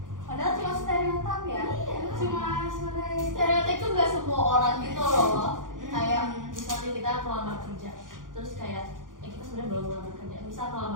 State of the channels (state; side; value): late; left; 0.89 ms